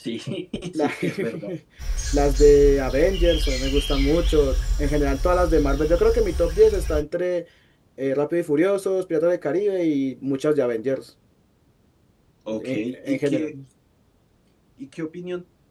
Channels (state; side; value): identical; both; correlation 1.00